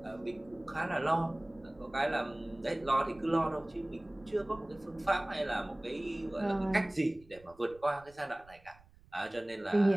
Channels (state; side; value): noise; right; rumble, 26 dB below the sound